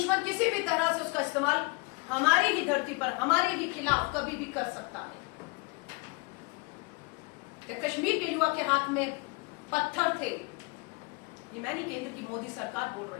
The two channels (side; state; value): right; quieter; 28.7 dB